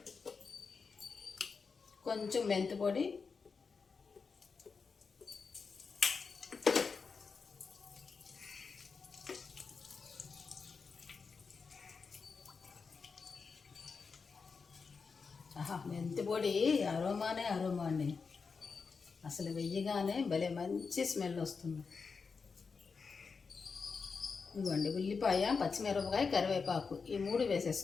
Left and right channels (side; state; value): right; quieter; 5.1 dB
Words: కొంచెం మెంతి పొడి, మెంతి పొడి అరోమా అండి. అసలు వెయ్యగానే భలే మంచి స్మెల్ వస్తుంది. ఇదిగోండి ఉల్లిపాయ, పచ్చిమిరపకాయ, కరివేపాకు ఈ 3